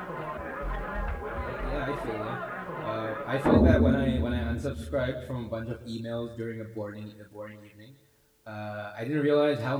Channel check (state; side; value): identical; both; correlation 1.00